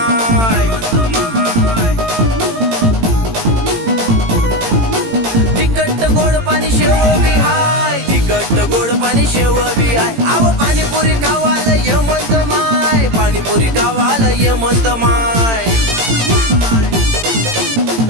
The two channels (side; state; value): left; late; 18 ms